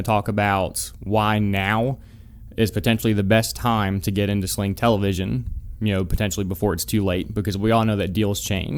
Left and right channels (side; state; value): both; identical; correlation 1.00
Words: talk about why now is potentially the best time to get into Sling Television, potentially before it's too late, because we all know that deals